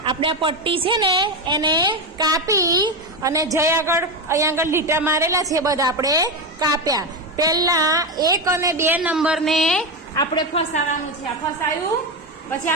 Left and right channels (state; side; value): normal; both; correlation 0.14